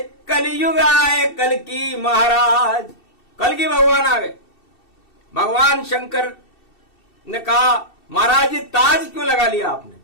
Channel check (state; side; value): late; right; 2.7 ms